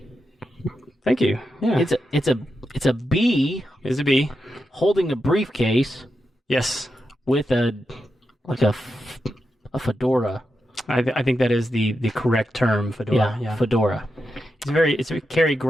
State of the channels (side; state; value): both; normal; correlation 0.87